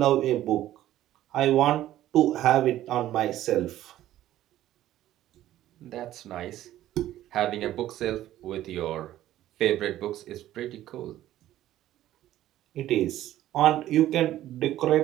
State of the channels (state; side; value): quieter; left; 13.5 dB